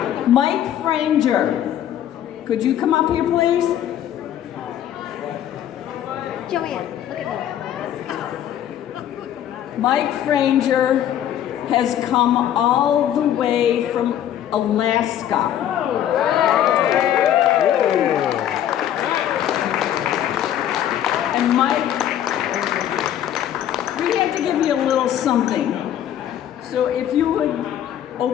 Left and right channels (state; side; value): quieter; right; 10.9 dB